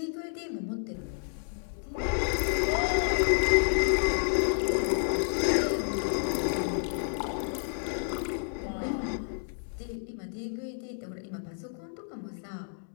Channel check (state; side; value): silent; right; digital silence